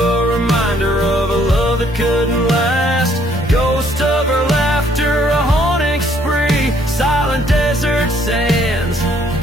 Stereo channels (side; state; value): both; normal; correlation 0.65